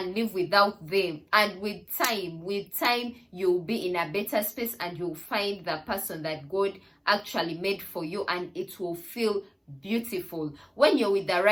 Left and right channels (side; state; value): both; identical; correlation 1.00